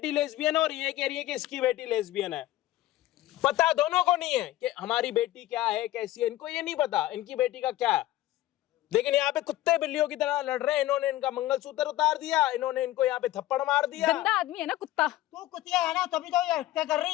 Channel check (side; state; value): right; quieter; 15.4 dB